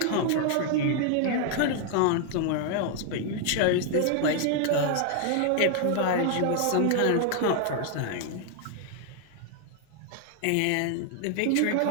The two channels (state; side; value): different; both; correlation 0.00